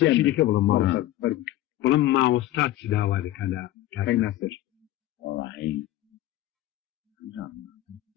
بڵم ماوەستا چ داوا دەکەن لە کاکەی ناسەر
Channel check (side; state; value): right; quieter; 14.9 dB